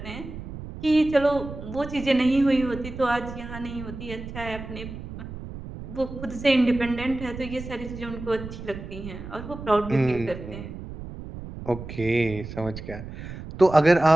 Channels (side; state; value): right; noise; rumble, 11 dB below the sound